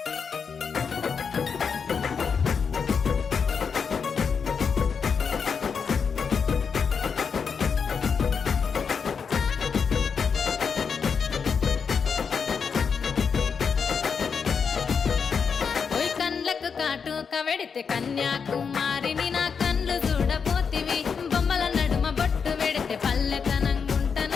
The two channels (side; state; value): right; quieter; 6.1 dB